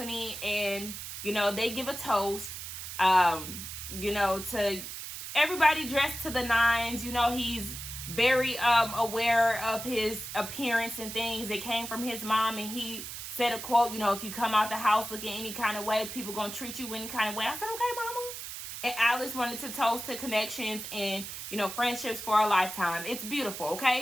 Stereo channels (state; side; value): noise; right; hiss, 8 dB below the sound